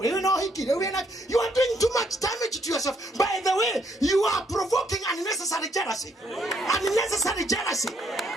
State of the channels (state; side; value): normal; both; correlation 0.71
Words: no hiki we na you are doing too much damage to yourself. By the way, you are provoking unnecessary jealousy